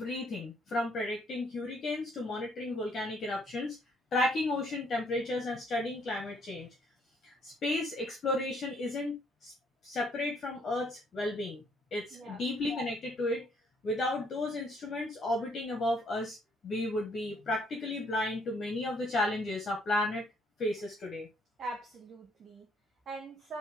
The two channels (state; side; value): normal; both; correlation 0.67